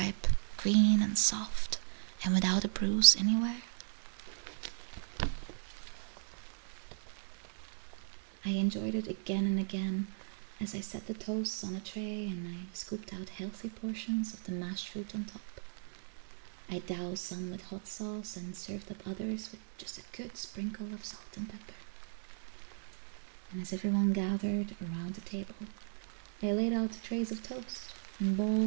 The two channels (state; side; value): silent; left; digital silence